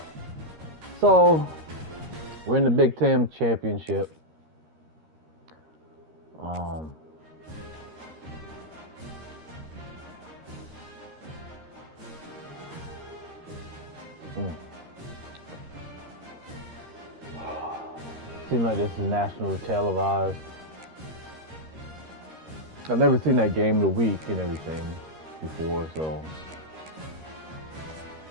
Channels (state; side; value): late; left; 13 ms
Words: So, we're in the Big Ten Championship. Seems like this is national televised. I've never seen that game of the week and everything before, so